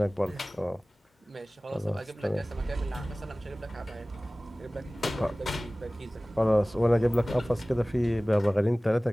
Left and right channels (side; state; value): both; normal; correlation 0.98